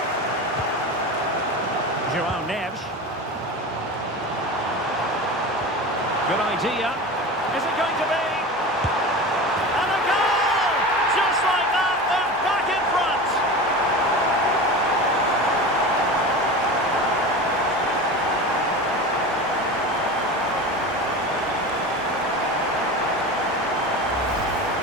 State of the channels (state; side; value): normal; both; correlation 0.30